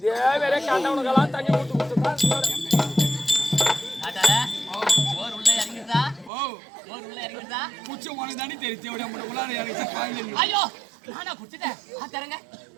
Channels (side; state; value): left; drops out; at 6.3 s